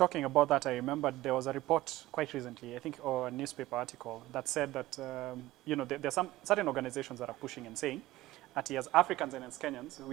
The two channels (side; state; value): left; quieter; 16.9 dB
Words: about that, I remembered there was a report quite recently, I think, or a newspaper article that said that, you know, there are some certain organizations that are pushing and saying that as Africans and as Kenyans,